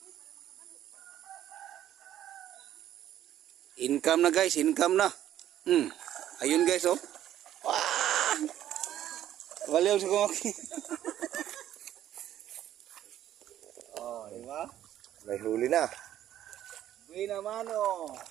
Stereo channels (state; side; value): quieter; left; 11.8 dB